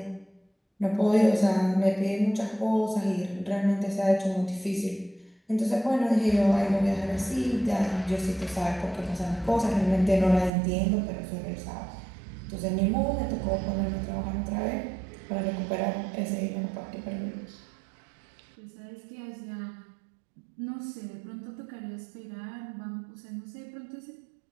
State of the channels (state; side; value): drops out; left; at 10.5 s